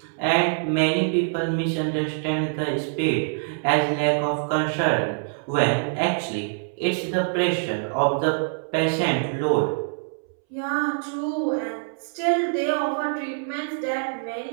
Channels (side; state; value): left; silent; 62 dB below the other